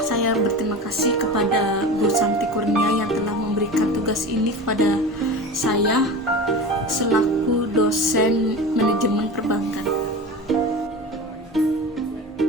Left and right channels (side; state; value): both; normal; correlation 0.31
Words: berterima kasih kepada Bu Santi Kurnia yang telah memberikan tugas ini kepada saya selaku dosen manajemen perbankan.